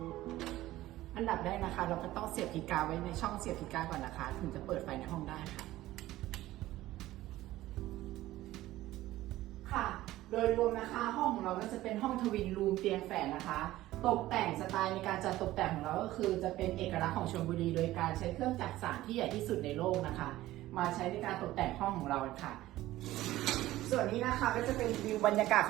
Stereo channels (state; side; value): quieter; left; 15.9 dB